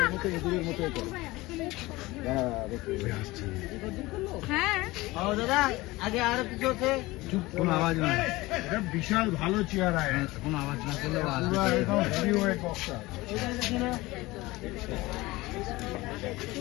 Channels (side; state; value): right; quieter; 20.3 dB